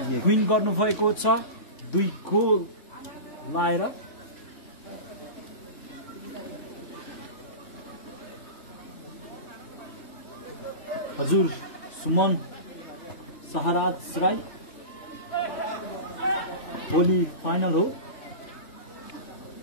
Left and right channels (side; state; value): right; late; 3.5 ms